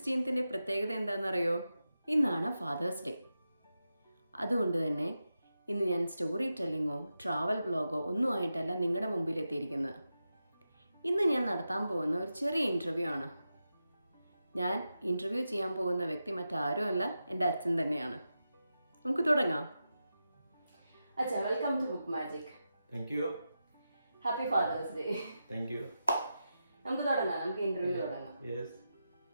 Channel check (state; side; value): inverted; both; correlation -0.90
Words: പ്രത്യേകത എന്താണെന്നറിയോ? ഇന്നാണ് ഫാദേഴ്സ് ഡേ. അതുകൊണ്ട് തന്നെ ഇന്ന് ഞാൻ സ്റ്റോറി ടെല്ലിങ്ങോ ട്രാവൽ വ്ളോഗോ ഒന്നും ആയിട്ടല്ല നിങ്ങളുടെ മുമ്പിൽ എത്തിയിരിക്കുന്നത്. ഇന്ന് ഞാൻ നടത്താൻ പോകുന്ന ഒരു ചെറിയ ഇൻ്റർവ്യൂ ആണ്. ഞാൻ ഇൻ്റർവ്യൂ ചെയ്യാൻ പോകുന്ന വ്യക്തി മറ്റാരുമല്ല, എൻ്റെ അച്ഛൻ തന്നെയാണ്. നമുക്ക് തുടങ്ങാം. അച്ഛാ, welcome to book magic. Thank you. Happy father's day. Thank you. നമുക്ക് തുടങ്ങാം, നമുക്ക് ഇന്റർവ്യൂ തുടങ്ങാം.